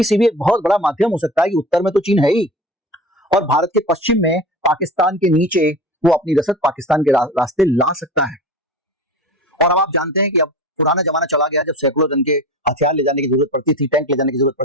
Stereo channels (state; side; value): normal; both; correlation 0.34